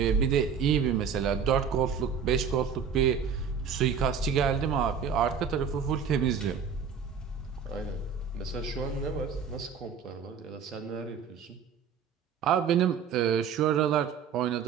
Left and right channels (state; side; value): quieter; left; 6.8 dB